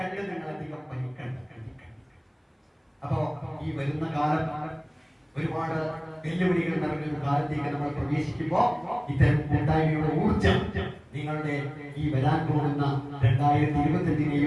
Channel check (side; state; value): both; identical; correlation 1.00